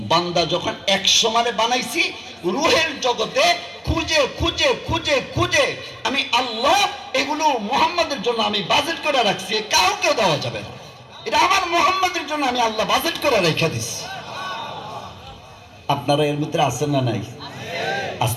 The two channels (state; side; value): identical; both; correlation 1.00